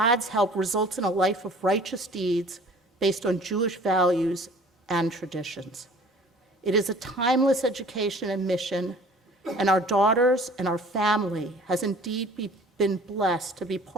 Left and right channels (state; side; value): normal; both; correlation 0.49